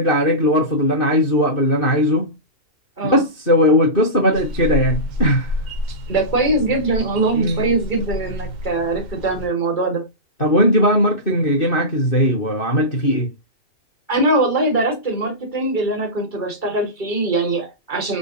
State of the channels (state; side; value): late; right; 2.6 ms